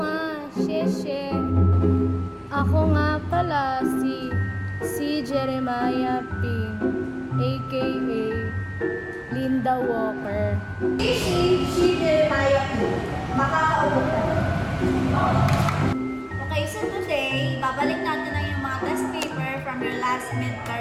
xie. Ako nga pala si Jeremiah Ping, aka Linda Walker. Si Jeremiah P. Makakaupo ka. Okay, so today, babalik natin na yung mga test paper from your last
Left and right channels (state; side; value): identical; both; correlation 1.00